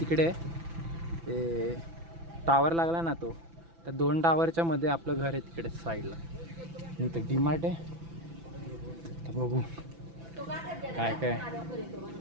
तिकडे आहे. ते टावर लागला ना तो, त्या 2 टावरच्या मध्ये आपलं घर आहे तिकडे साईडला. इथं डीमार्ट आहे. तर बघू काय काय.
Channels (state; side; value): late; left; 6.0 ms